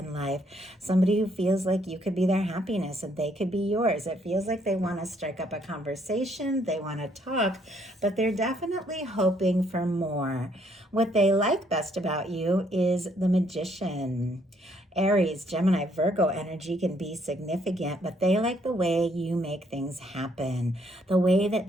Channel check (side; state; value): both; normal; correlation 0.69